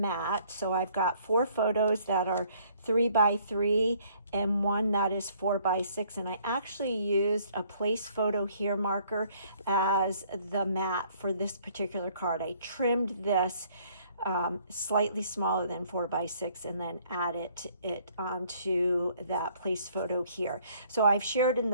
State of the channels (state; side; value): inverted; both; correlation -0.62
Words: So I've got 4 photos that are 3 by 3 and 1 that is 4 by 6, and I actually used a place photo here marker as the mat for this particular card. I trimmed this slightly smaller than 4 by 6 and then added it onto that place photo here. So I've shared in